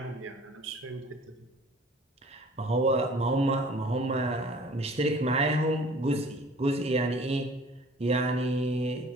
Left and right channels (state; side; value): normal; both; correlation 0.49